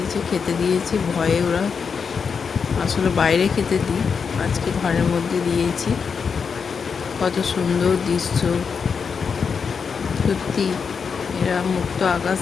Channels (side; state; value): right; quieter; 5.9 dB